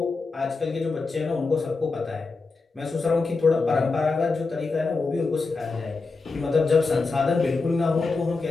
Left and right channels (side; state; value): right; quieter; 4.0 dB